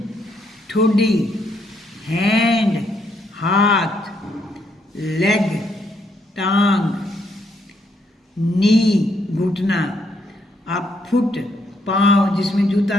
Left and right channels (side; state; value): both; normal; correlation 0.74